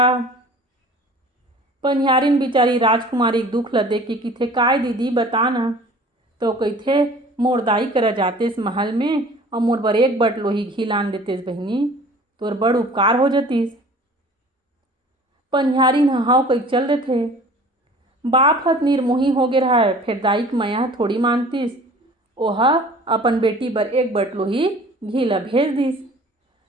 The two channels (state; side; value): normal; both; correlation 0.47